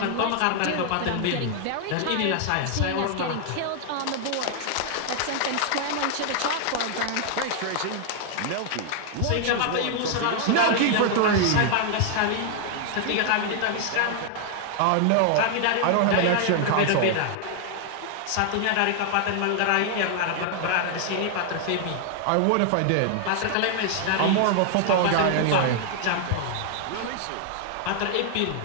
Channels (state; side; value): different; both; correlation 0.00